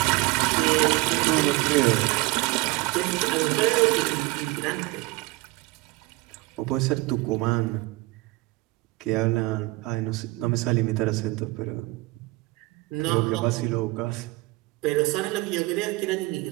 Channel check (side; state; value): left; quieter; 21.6 dB